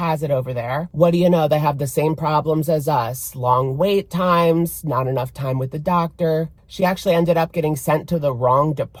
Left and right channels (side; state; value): both; identical; correlation 1.00